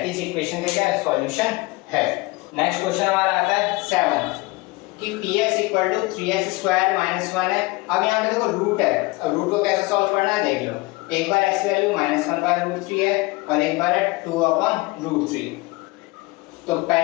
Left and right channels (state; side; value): quieter; right; 23.3 dB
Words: इस इक्वेशन का क्या है, सॉल्यूशन है। नेक्स्ट क्वेश्चन हमारा आता है 7 कि px = 3x² - 1 है। अब यहाँ पे देखो रूट है, अब रूट को कैसे सॉल्व करना है देख लो। एक बार x की वैल्यू -1/√3 है और एक बार है 2/√3। तो